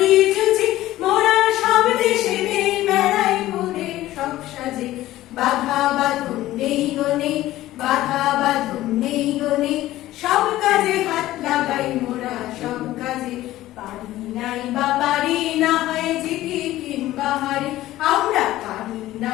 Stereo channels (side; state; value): right; quieter; 15.4 dB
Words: জুঝি, মোরা সব দেশে বেড়াই ঘুরে সব সাজে, বাধা বাঁধন নেই গনে, বাধা বাঁধন নেই গনে, সব কাজে হাত লাগাই মোরা, সব কাজে, পারি নাই বা পারি না হয় জিতি কিংবা হারি, আমরা